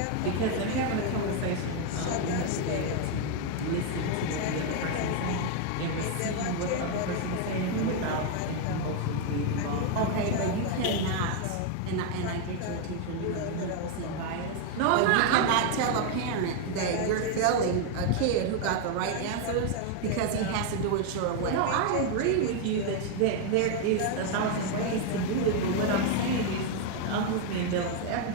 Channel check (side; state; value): both; different; correlation 0.01